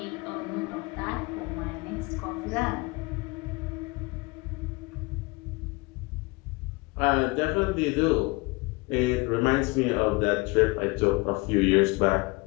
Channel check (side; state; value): right; quieter; 25.2 dB